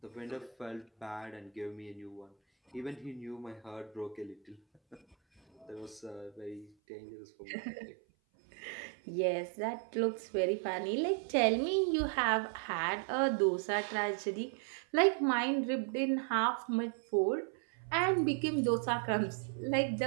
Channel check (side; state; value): left; drops out; at 6.7 s